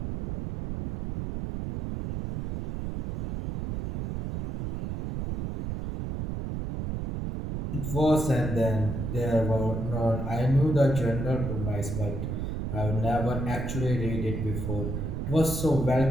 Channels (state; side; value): noise; right; rumble, 4 dB below the sound